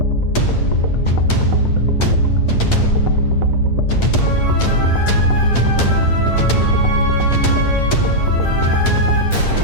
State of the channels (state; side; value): late; right; 8.8 ms